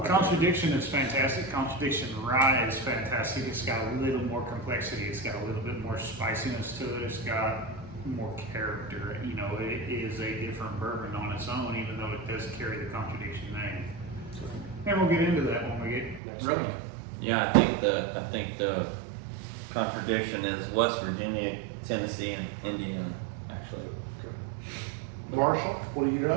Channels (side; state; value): left; drops out; at 16.2 s